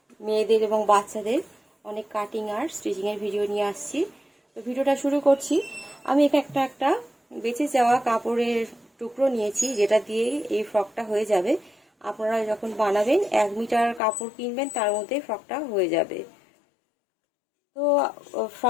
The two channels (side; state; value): right; drops out; at 14.0 s